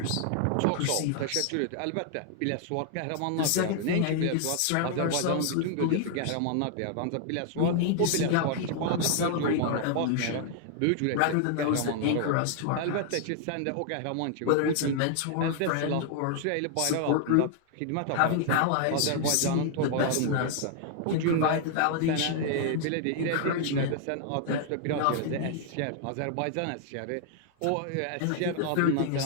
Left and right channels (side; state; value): both; different; correlation 0.00